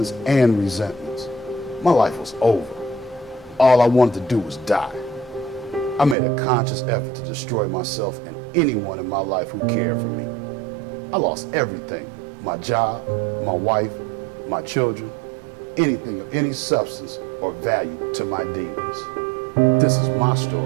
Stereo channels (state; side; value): drops out; left; at 6.2 s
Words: and resentments. My life was over. All I wanted to do was die. I made a conscious effort to destroy myself and anyone in my life who cared for me. I lost everything: my job, my wife, my children, anything of any substance or value to my demons. This is my